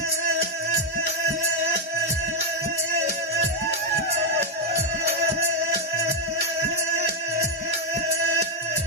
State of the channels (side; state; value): both; normal; correlation 0.02